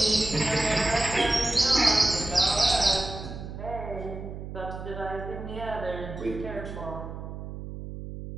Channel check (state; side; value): noise; right; hum, 9 dB below the sound